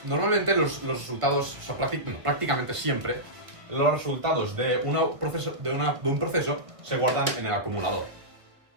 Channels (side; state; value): left; late; 1.4 ms